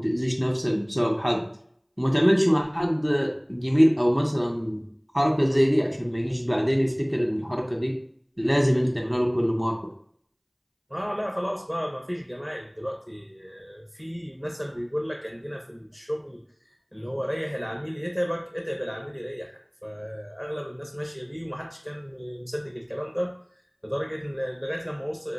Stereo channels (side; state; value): both; identical; correlation 1.00